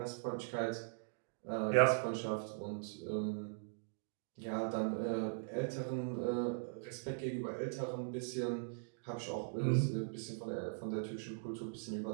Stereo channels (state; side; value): silent; left; digital silence